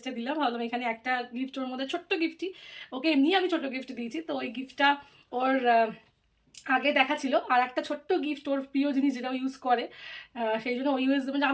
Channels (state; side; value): identical; both; correlation 1.00